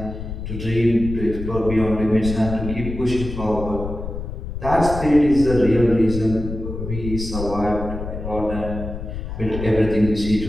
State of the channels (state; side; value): noise; left; rumble, 7 dB below the sound